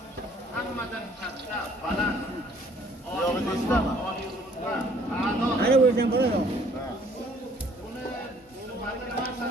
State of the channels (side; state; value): both; normal; correlation 0.59